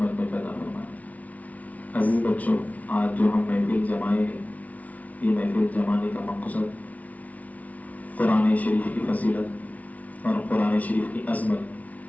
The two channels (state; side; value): late; right; 0.070 ms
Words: میں پیدا فرمایا۔ عزیز بچوں، آج جو ہم محفل جمائے ہیں، یہ محفل جمانے کا مقصد قرآن شریف کی فضیلت اور قرآن شریف کی